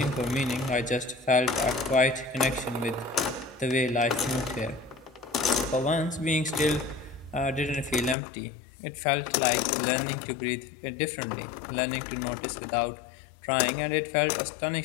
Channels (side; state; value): right; drops out; at 8.2 s